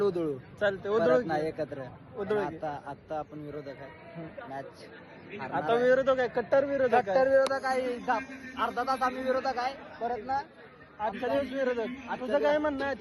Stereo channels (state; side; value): identical; both; correlation 1.00